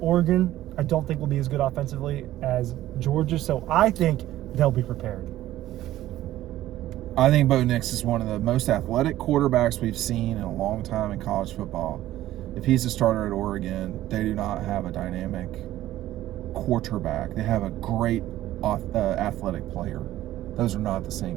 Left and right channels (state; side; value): quieter; left; 14.3 dB